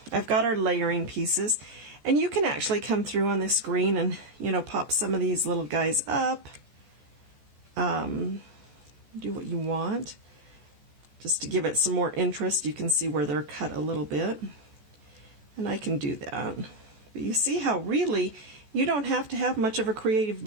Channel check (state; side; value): late; left; 14 ms